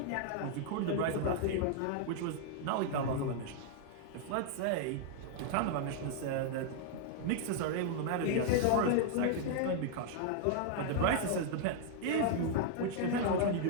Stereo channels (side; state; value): both; different; correlation 0.00